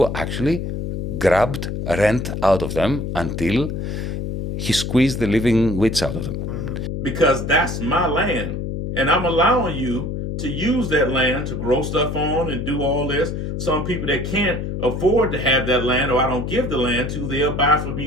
actually grabbed rent out of them until he squeezed the living wits out of them. Because that's my land. And I'm allowing you to use that land to grow stuff on and do all this. Some people that can't afford to have that land, or I don't give the land to, they'll buy from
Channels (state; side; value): noise; left; hum, 4 dB below the sound